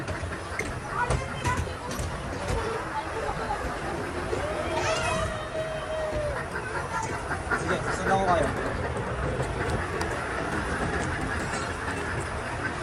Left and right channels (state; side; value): identical; both; correlation 1.00